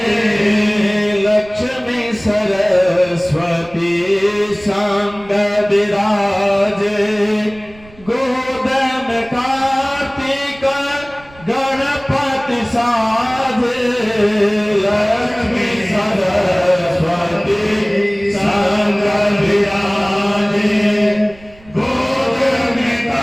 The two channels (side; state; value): right; noise; rumble, 24 dB below the sound